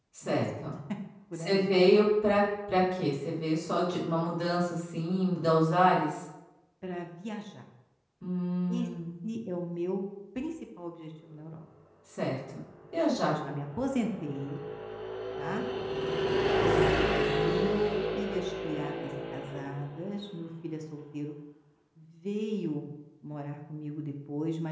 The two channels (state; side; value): identical; both; correlation 1.00